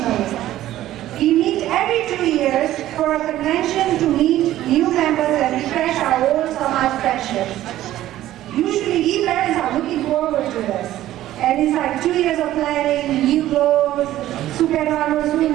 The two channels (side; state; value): left; quieter; 14.0 dB